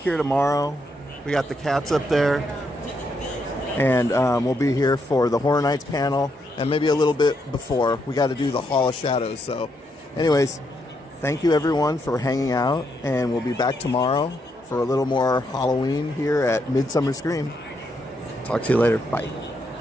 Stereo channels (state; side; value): normal; both; correlation 0.78